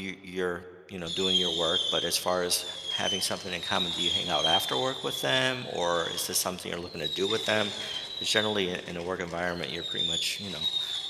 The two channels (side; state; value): both; identical; correlation 1.00